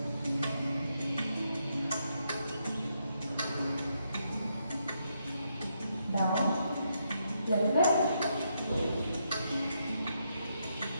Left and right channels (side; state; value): both; inverted; correlation -0.79